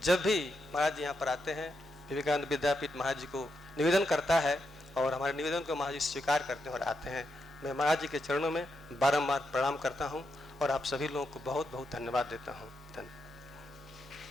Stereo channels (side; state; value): both; normal; correlation 0.84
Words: जब भी महाराज जी यहाँ पर आते हैं विवेकानंद विद्यापीठ महाराज जी को निवेदन करता है और हमारे निवेदन को महाराज जी स्वीकार करते हैं और आते हैं। मैं महाराज जी के चरणों में बारंबार प्रणाम करता हूँ और आप सभी लोगों को बहुत बहुत धन्यवाद देता हूँ। धन्यवाद।